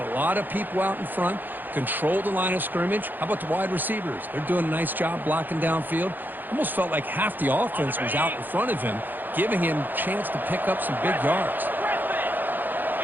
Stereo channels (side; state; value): left; late; 0.087 ms